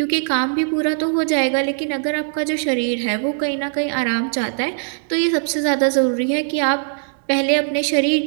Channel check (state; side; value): silent; left; digital silence